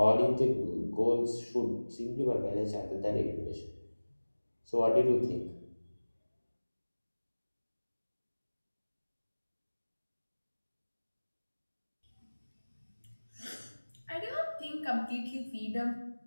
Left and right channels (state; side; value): inverted; both; correlation -1.00